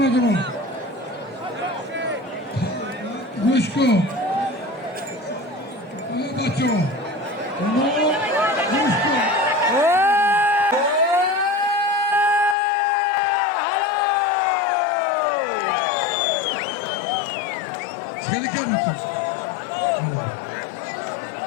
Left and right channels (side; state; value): right; drops out; at 12.6 s